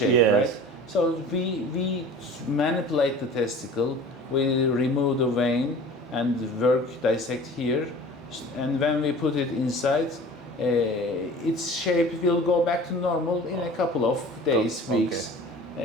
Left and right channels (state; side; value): normal; both; correlation 0.41